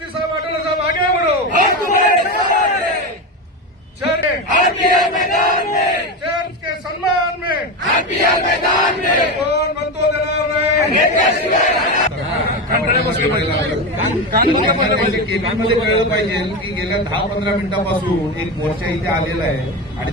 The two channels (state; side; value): normal; both; correlation 0.17